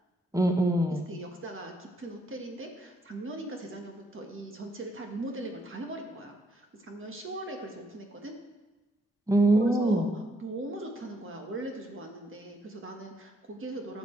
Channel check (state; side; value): normal; both; correlation 0.73